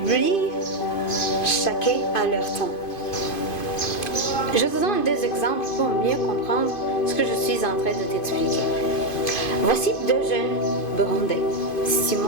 chacun à leur temps. Je te donne des exemples pour mieux comprendre ce que je suis en train de t'expliquer. Voici deux jeunes burundais,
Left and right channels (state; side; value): late; right; 2.5 ms